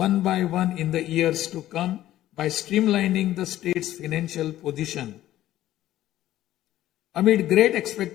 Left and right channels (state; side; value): quieter; right; 13.7 dB